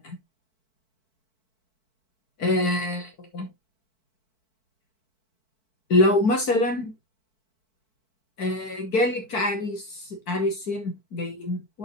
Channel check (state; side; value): late; right; 4.5 ms